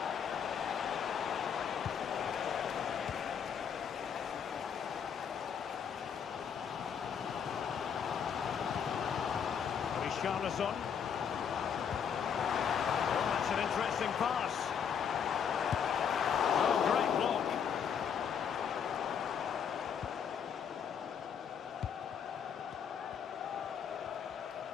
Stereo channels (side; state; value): right; quieter; 7.6 dB